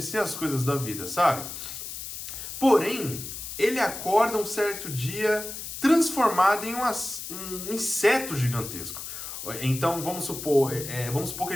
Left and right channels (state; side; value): noise; left; hiss, 8 dB below the sound